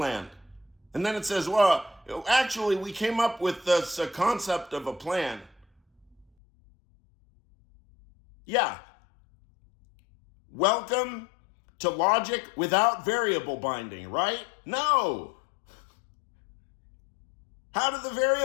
And then it says, well, actually, we came up with this concept of a plan. Yeah. Welcome to logic without variable binding, right? No. How did the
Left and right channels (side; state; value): right; drops out; at 6.2 s